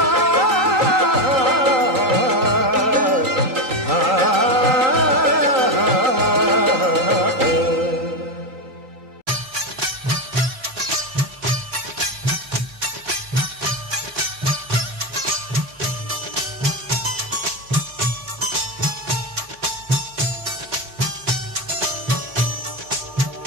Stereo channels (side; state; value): left; late; 3.9 ms